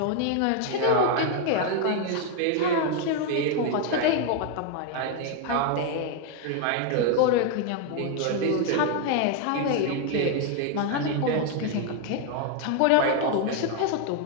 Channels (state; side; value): different; both; correlation 0.01